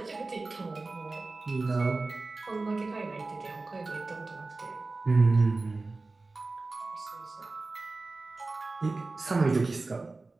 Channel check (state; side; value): quieter; left; 3.5 dB